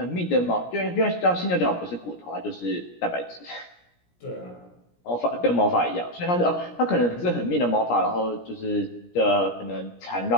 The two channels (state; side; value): late; right; 17 ms